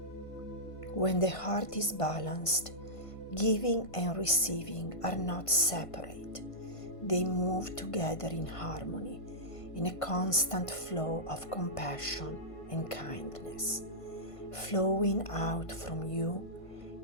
When the heart is balanced, giving and receiving are not separate. They move together in harmony, in a constant flow of compassion and kindness, flowing out from you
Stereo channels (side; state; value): right; late; 1.5 ms